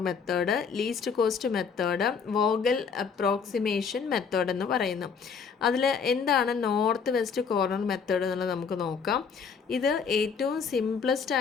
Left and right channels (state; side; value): quieter; right; 6.0 dB